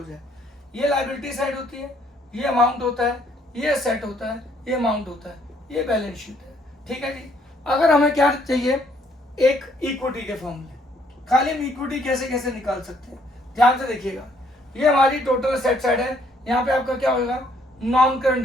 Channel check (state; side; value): normal; both; correlation 0.67